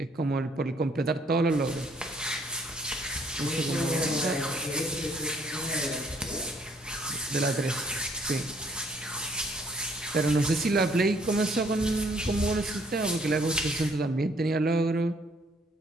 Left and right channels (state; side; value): normal; both; correlation 0.64